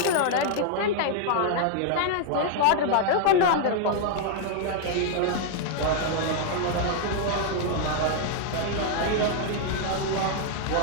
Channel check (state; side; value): different; both; correlation -0.01